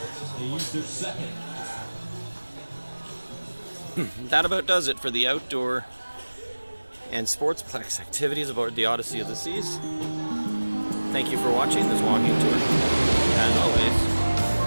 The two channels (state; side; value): inverted; both; correlation -1.00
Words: They used their second. That about does it for the outdoor and Sportsplex activities aboard the Odyssey of the Seas. Thank you for watching this walking tour. As